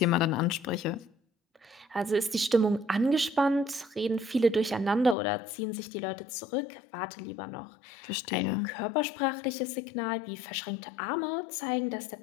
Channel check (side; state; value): right; drops out; at 5.2 s